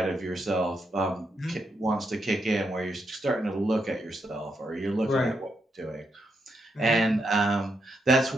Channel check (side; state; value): both; normal; correlation 0.81